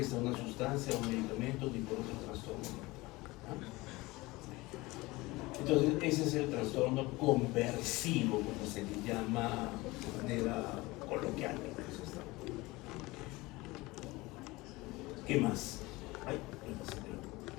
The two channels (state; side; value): quieter; right; 21.4 dB